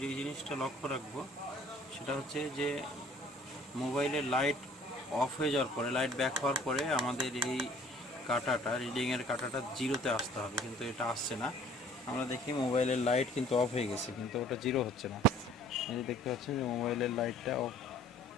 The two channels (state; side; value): normal; both; correlation 0.53